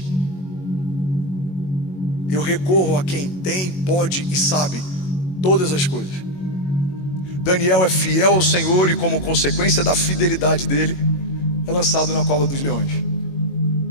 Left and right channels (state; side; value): late; right; 22 ms